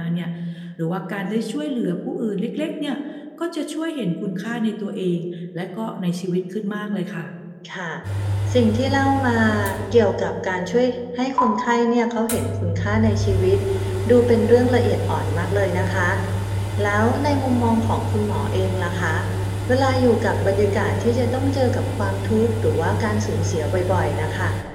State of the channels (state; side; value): identical; both; correlation 1.00